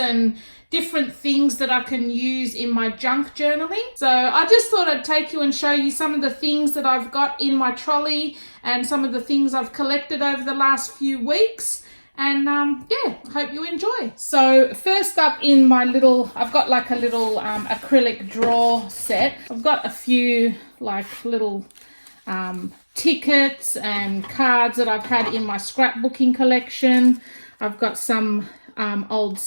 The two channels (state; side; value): inverted; both; correlation -1.00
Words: different things that I can use in my junk journaling. So I just thought I'd take you and show you some of the things that I've got in my trolley and some of the things I've collected over the last few weeks. And yeah, hope you enjoy. So first up in my little, I've got like a little acrylic drawer set. I've got a few like little tickets and cards that I've had in my scrapbooking collection. I've got some old